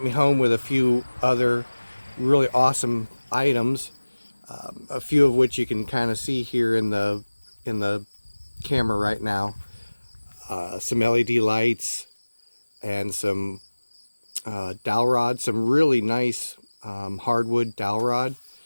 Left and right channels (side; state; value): both; inverted; correlation -1.00